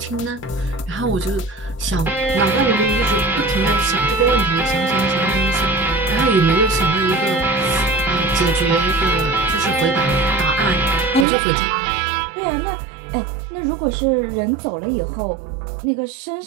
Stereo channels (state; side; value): drops out; left; at 11.2 s